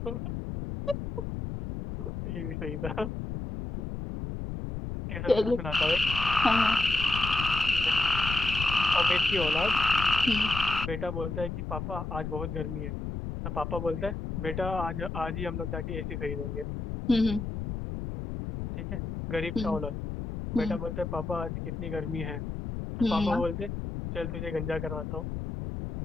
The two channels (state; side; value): noise; left; rumble, 5 dB below the sound